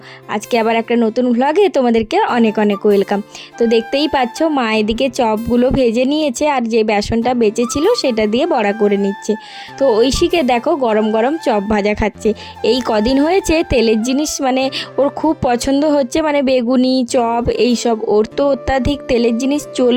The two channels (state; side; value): identical; both; correlation 1.00